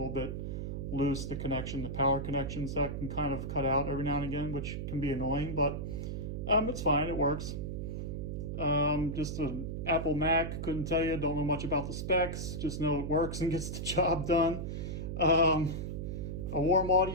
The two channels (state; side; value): noise; right; hum, 4 dB below the sound